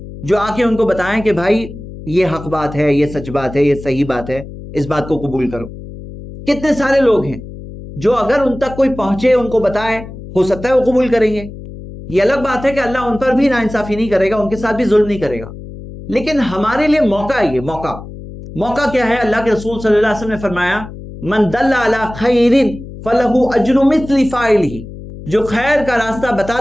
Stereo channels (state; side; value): noise; left; hum, 13 dB below the sound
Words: جو آ کے ان کو بتائیں کہ بھائی یہ حق بات ہے، یہ سچ بات ہے، یہ صحیح بات ہے، اس بات کو قبول کرو. کتنے سارے لوگ ہیں جو اگر ان تک کوئی پہنچے، ان کو بتائے، ہو سکتا ہے وہ قبول کریں گے. یہ الگ بات ہے کہ اللہ ان پر بھی ناانصافی نہیں کرے گا، ان کے ساتھ بھی ظلم نہیں کرے گا. لیکن ہمارے لیے موقع ہے. یہ موقع کیا ہے؟ اللہ کے رسول صلی اللہ علیہ وسلم نے فرمایا من دل علی خیر فلہ اجر مثل فاعلہ، جو خیر کا راستہ